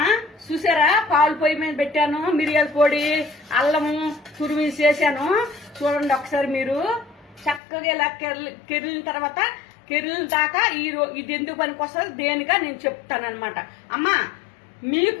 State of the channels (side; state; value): right; drops out; at 7.6 s